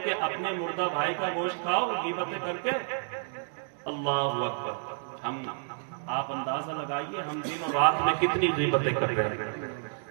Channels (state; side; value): silent; left; digital silence